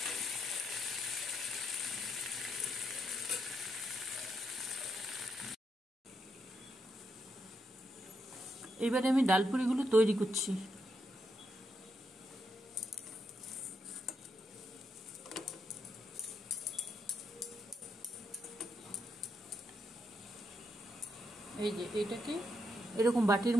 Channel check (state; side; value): normal; both; correlation 0.80